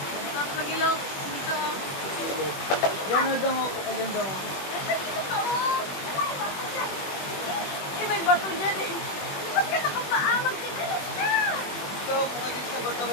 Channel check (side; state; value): right; late; 21 ms